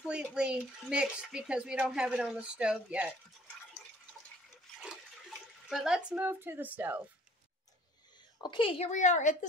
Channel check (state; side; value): normal; both; correlation 0.54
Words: mixed because we don't have it on the stove yet. But let's move to the stove. Okay, here we are at the